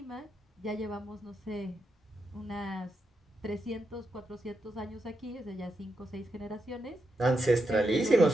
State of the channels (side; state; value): both; normal; correlation 0.84